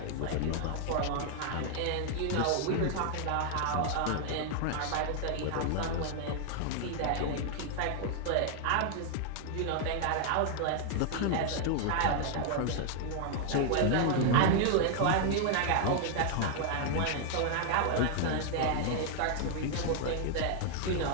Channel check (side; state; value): both; different; correlation 0.00